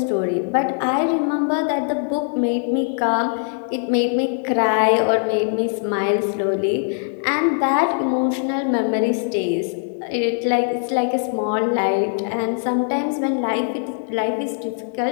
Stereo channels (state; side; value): silent; right; digital silence